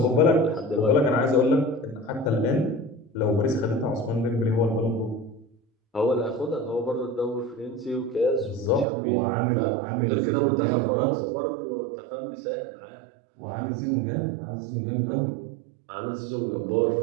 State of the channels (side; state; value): left; drops out; at 8.8 s